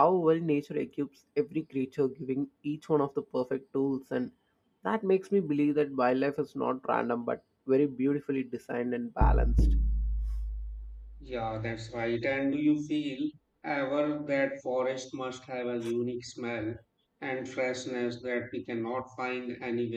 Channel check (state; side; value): identical; both; correlation 1.00